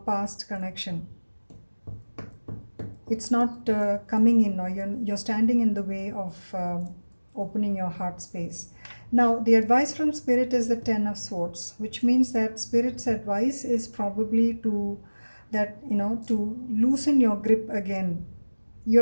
connection. It's not coming in, or you're standing in the way of opening your heart space. Now, the advice from Spirit is the Ten of Swords, which means that Spirit's advice is probably to that, to loosen your grip again. You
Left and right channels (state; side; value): inverted; both; correlation -1.00